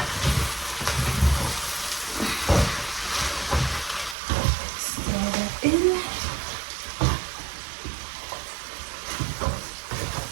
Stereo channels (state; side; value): drops out; left; at 4.2 s